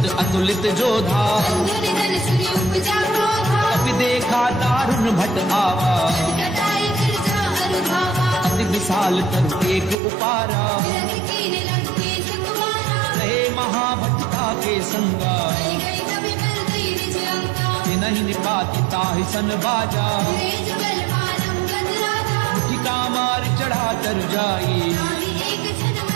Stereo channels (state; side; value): drops out; left; at 10.0 s